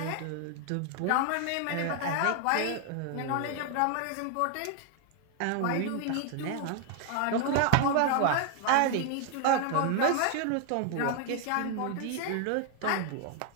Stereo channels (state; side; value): different; both; correlation 0.00